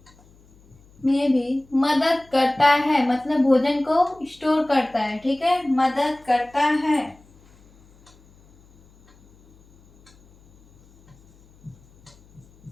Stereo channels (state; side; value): noise; left; hum, 29 dB below the sound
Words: भी मदद करता है, मतलब भोजन को स्टोर करता है, ठीक है, मदद करता है।